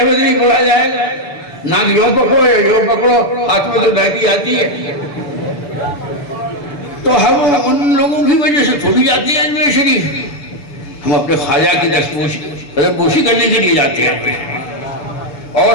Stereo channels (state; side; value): late; right; 6.9 ms